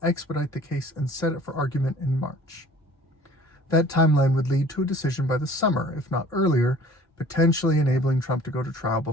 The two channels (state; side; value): normal; both; correlation 0.50